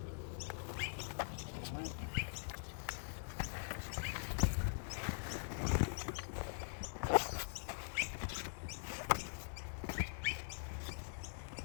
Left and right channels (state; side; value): silent; right; digital silence